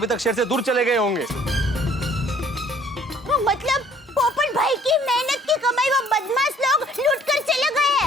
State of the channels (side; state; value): both; normal; correlation 0.58